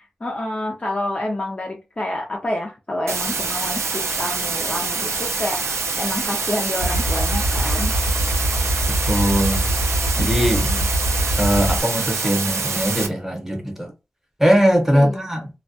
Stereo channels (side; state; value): both; normal; correlation 0.79